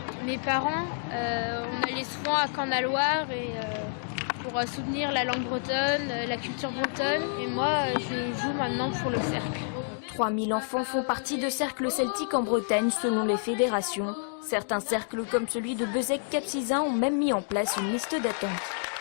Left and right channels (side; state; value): right; silent; digital silence